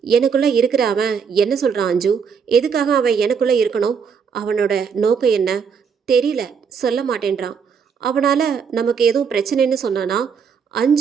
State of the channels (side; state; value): left; quieter; 6.4 dB